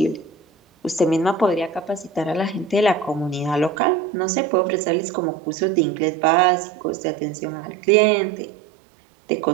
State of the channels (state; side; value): drops out; left; at 3.8 s